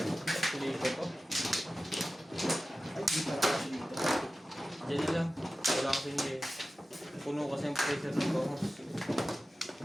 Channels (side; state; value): both; normal; correlation 0.95